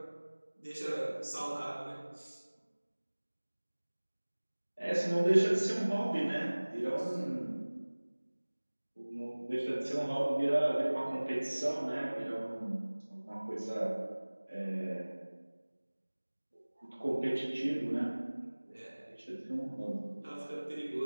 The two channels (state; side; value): inverted; both; correlation -1.00